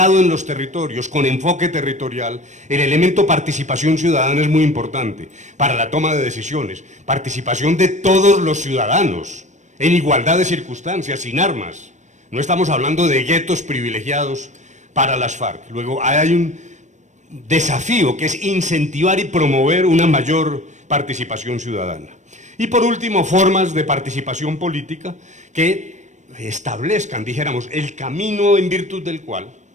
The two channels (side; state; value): left; late; 0.35 ms